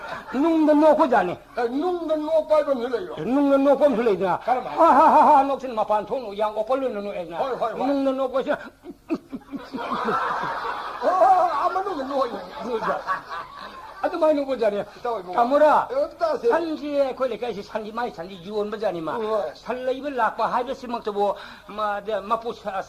노고잖아 눅도 노 빨고 늘어요 눅도 노고 늘어야 하하하 녹신 마판 통로 양 오벌르는 노에나 눅도 노고시 아무도 노요 아주 많이 노고잖아 까무라 산지에 거기까지 산지 많이 산지 유원 버자니마 살레입을 낙바 하이버스 먹도 마포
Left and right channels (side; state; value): both; identical; correlation 1.00